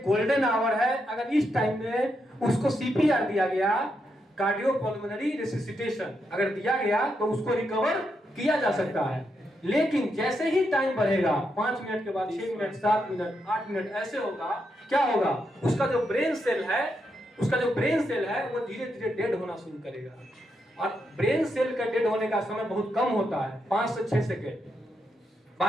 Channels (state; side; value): normal; both; correlation 0.82